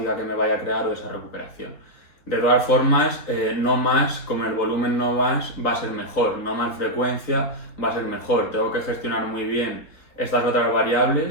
que me vaya a crear o esa recuperación. De todas formas, no más, como el volumen no más, va a ser mejor, no más frecuencia va a ser mejor. Tengo que gestionar muy bien estas otras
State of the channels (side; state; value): right; late; 3.7 ms